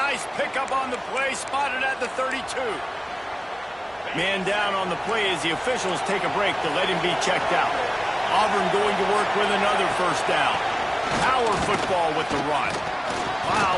pickup on the play. Spotted at the 32. Man down on the play as the officials take a break to let him be checked out. Auburn going to work with another first down. Power football with the run.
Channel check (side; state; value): both; identical; correlation 1.00